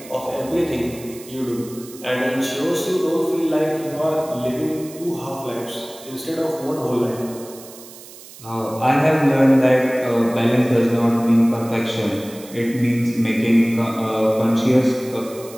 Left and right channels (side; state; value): right; noise; hiss, 18 dB below the sound